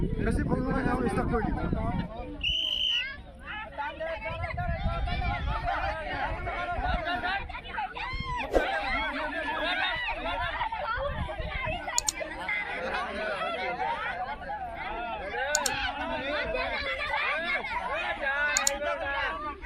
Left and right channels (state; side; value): identical; both; correlation 1.00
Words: বেছি ভুল নহয় খেল ষ্টাৰ্ট কৰি দিম